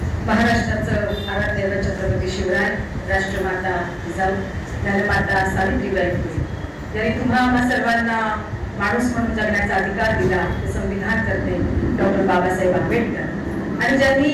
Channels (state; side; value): identical; both; correlation 1.00